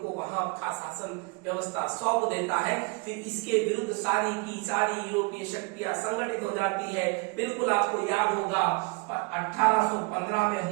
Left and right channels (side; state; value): left; quieter; 29.6 dB